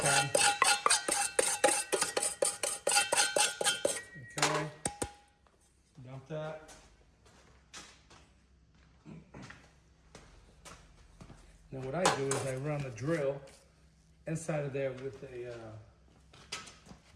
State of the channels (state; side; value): identical; both; correlation 1.00